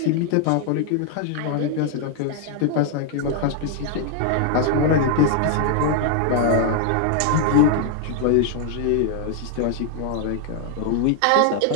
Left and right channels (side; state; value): both; different; correlation 0.00